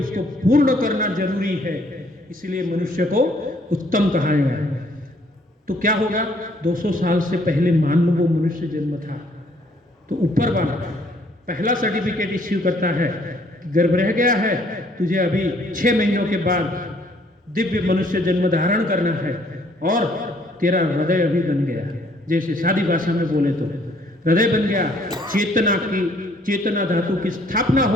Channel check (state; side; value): normal; both; correlation 0.63